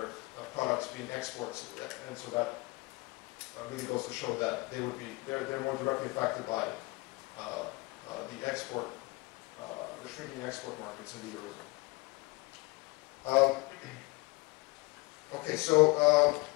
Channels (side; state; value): right; quieter; 24.3 dB